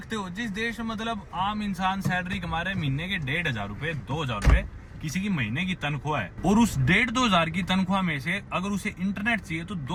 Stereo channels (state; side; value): identical; both; correlation 1.00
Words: हो जिस देश में मतलब आम इंसान सैलरी कमा रहे हैं महीने के 1,500 रुपए 2,000 रुपए, किसी की महीने की तनख्वाह है, और उस 1,500-2,000 की तनख्वाह में से अगर उसे इंटरनेट चाहिए तो